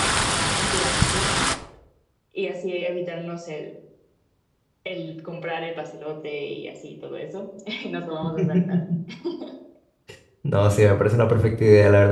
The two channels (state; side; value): identical; both; correlation 1.00